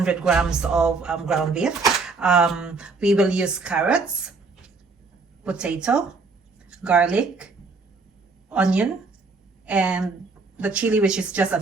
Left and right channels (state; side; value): quieter; left; 4.2 dB